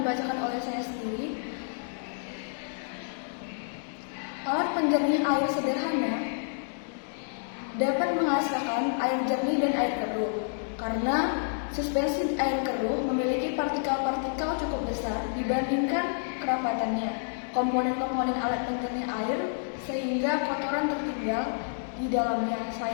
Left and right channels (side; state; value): right; silent; digital silence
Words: dibacakan oleh saya sendiri. Alat penjernih air sederhana dapat menghasilkan air jernih dan air keruh. Karena suspensi air keruh memiliki partikel-partikel cukup besar dibandingkan kerapatannya. Komponen-komponen alat penjernih air sehingga kotoran tertinggal di dalamnya.